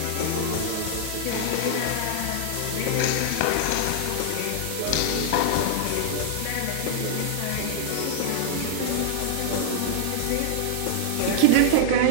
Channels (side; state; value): both; different; correlation -0.01